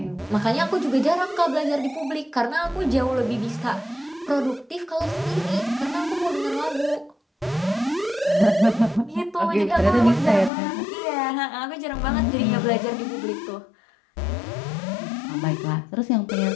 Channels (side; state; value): right; drops out; at 10.5 s